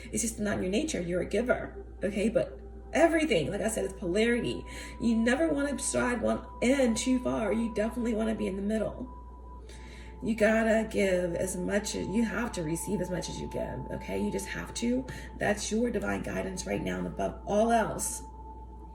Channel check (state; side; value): identical; both; correlation 1.00